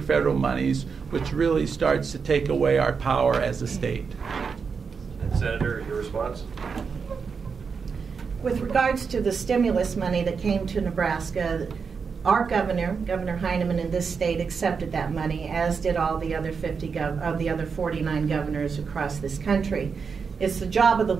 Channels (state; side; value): quieter; left; 5.6 dB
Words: federal monies, which really starts to take away our power as a state. And Senator, your response? With regards to the stimulus money that came to Nebraska, our Governor Heineman in this state accepted that money, as did all the other 49 governors across this country. It's the job of the